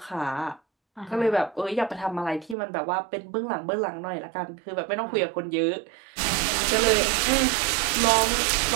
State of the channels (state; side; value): drops out; left; at 2.6 s